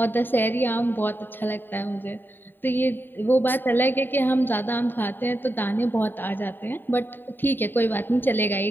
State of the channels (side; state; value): right; late; 0.094 ms